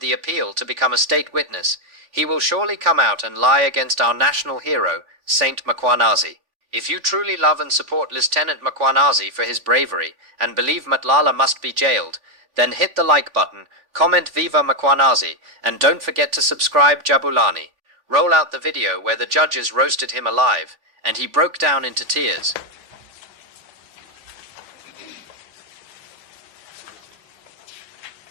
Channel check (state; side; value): late; left; 3.5 ms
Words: the appeal to become a state witness, he will surely come out and lie against our national hero, Saint Mkhwanazi. If you truly love and support Lieutenant Mkhwanazi for his bravery and believe Matlala must be jailed, then hit the like button, comment Viva Mkhwanazi, and don't forget to subscribe Jabulani. Roll out the video where the judges roasted him alive, and he broke down into tears.